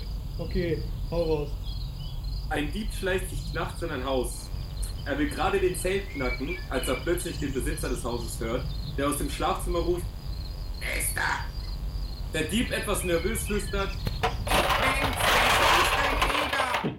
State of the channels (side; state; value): both; identical; correlation 1.00